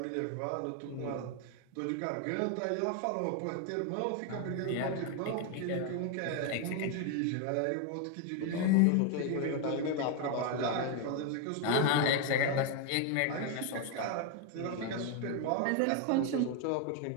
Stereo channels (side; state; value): both; different; correlation 0.01